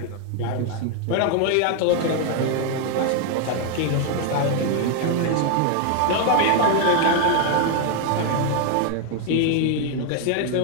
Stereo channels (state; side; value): different; both; correlation 0.00